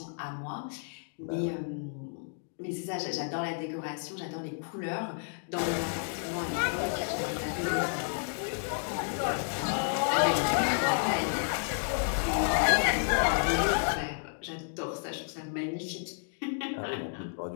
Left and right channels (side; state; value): right; silent; digital silence